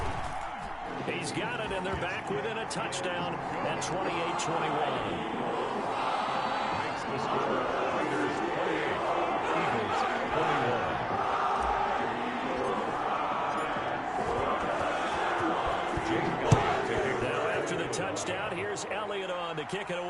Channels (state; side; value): identical; both; correlation 1.00